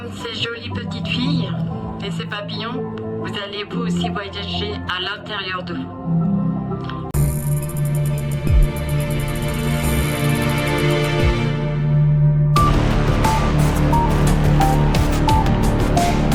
ces jolies petites filles et ces papillons, vous allez vous aussi voyager à l'intérieur de vous.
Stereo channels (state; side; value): identical; both; correlation 1.00